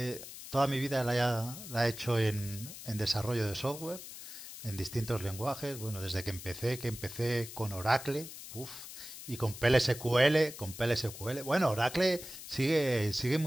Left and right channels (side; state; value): left; noise; hiss, 12 dB below the sound